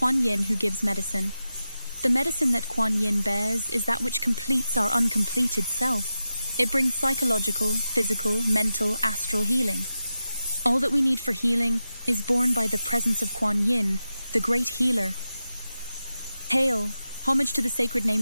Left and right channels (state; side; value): inverted; both; correlation -0.91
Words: Yin, who gives medicine. The medicine that Kuan Yin bears is that which completes our uncompleted self. It brings psychological, physical, mental, astral healing. All that we need for healing is borne by the presence of Kuan Yin, the great healer. Hail! Homage to the sacred name